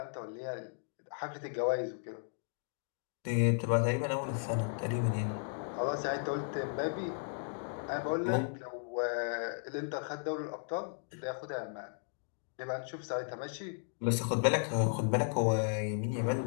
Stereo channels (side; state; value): right; silent; digital silence